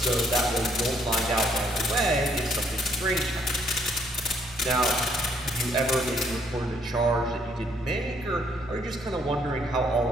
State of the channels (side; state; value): both; normal; correlation 0.68